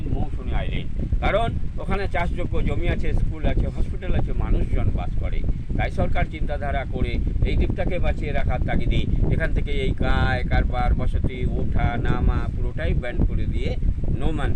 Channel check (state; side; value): identical; both; correlation 1.00